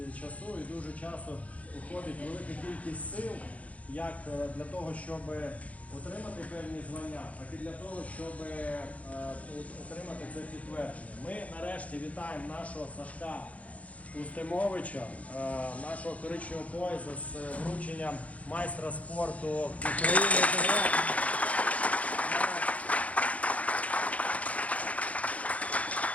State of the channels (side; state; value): right; late; 0.067 ms